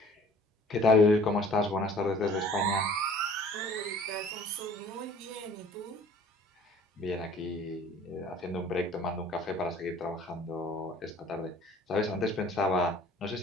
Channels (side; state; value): both; normal; correlation 0.51